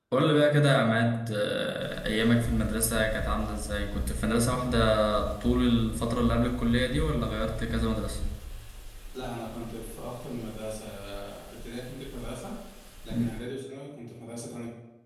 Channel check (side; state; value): both; identical; correlation 1.00